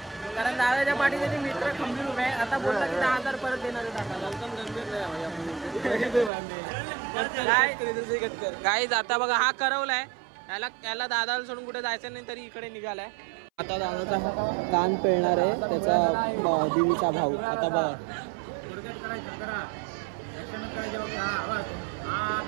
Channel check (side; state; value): left; drops out; at 6.3 s